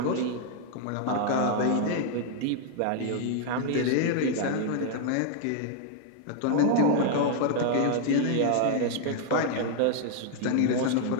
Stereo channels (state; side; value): different; both; correlation 0.00